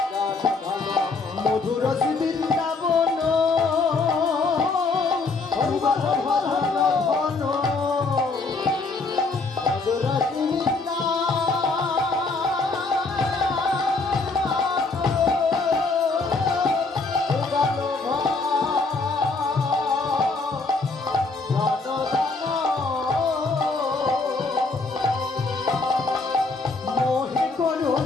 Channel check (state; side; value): quieter; right; 3.9 dB